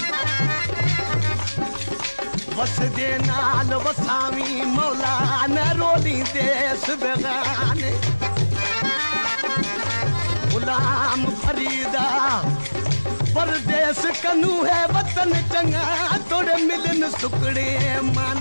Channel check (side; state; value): both; inverted; correlation -1.00